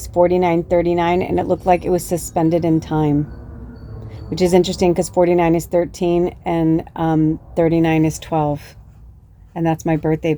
4939, and it looked like it was suspended in time, which is interesting because 49 is 13 and 39 is 12. And that's my birthday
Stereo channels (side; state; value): both; identical; correlation 1.00